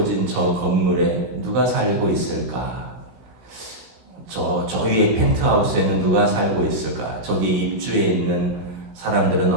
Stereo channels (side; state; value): left; late; 16 ms